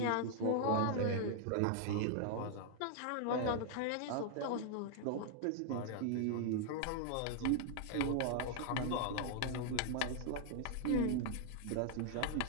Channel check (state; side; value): different; both; correlation 0.00